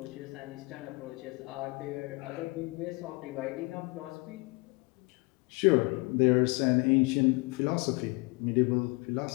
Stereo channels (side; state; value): right; quieter; 27.4 dB